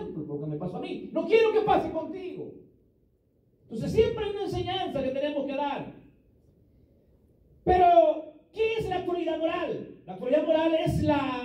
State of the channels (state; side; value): identical; both; correlation 1.00